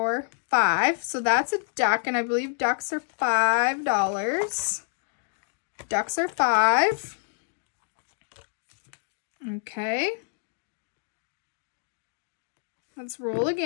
5. So that's a duck, and I believe ducks are $5. Ducks are 5. Okay. Let's roll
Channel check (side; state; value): right; silent; digital silence